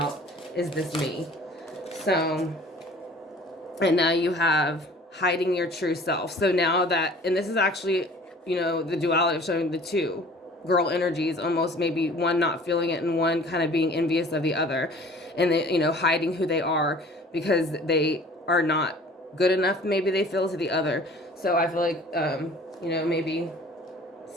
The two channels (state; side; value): normal; both; correlation 0.48